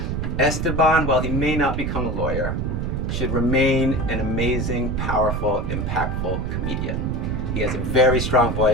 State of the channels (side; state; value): right; noise; rumble, 2 dB below the sound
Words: Esteban, while he may not become a lawyer, should remain an amazing, powerful, impactful comedian. He has a very strong